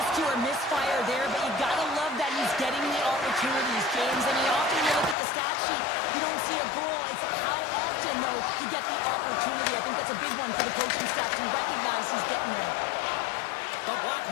or misfire there, but you gotta love that he's getting the opportunities, James. I mean, often you look at the stat sheet, you don't see a goal. It's how often, though, you get the opportunity. I think that's a big one for the coaching staff to recognize he's getting there. The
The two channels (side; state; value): right; drops out; at 5.2 s